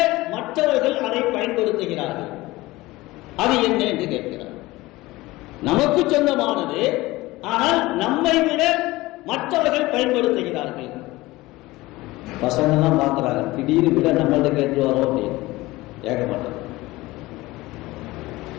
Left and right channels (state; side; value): quieter; right; 19.6 dB